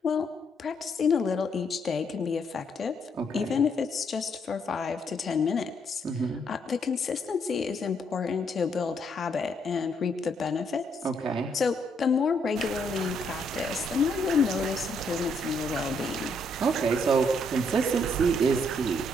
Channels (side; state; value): both; normal; correlation 0.73